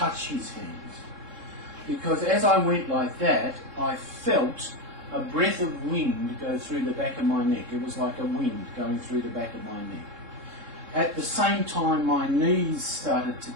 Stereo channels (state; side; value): late; left; 3.7 ms